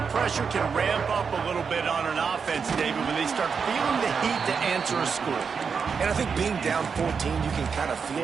pressure can ramp up a little bit on an offense, David, when they start feeling the heat to answer a score. And I think being down 14, you can kind of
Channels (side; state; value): left; quieter; 5.9 dB